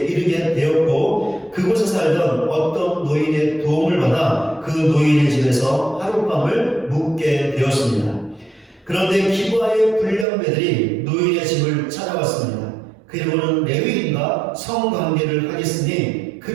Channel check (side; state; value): left; drops out; at 10.2 s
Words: 이르게 되었고 그곳에 살던 어떤 노인의 도움을 받아 그 노인의 집에서 하룻밤을 묵게 되었습니다. 그런데 기브아의 불량배들이 노인의 집을 찾아왔습니다. 그리고는 레위인과 성관계를 하겠으니